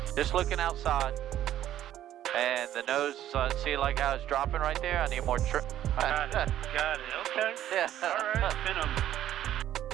Just looking outside. And the nose, see like how it's dropping right there? I need more got it, okay. Yeah. Alright,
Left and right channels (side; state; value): left; quieter; 12.0 dB